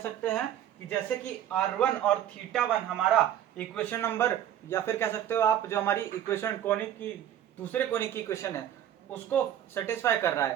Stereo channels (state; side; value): quieter; left; 10.8 dB